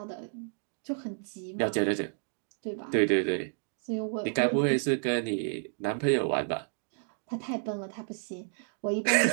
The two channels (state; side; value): silent; left; digital silence